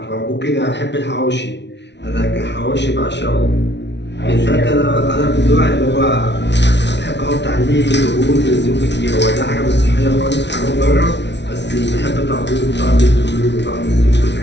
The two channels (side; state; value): right; late; 0.51 ms